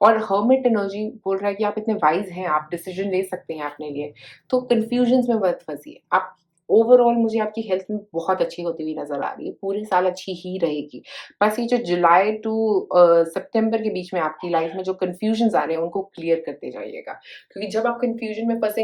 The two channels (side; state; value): both; identical; correlation 1.00